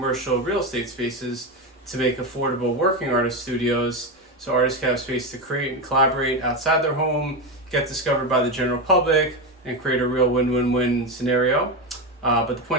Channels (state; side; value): normal; both; correlation 0.14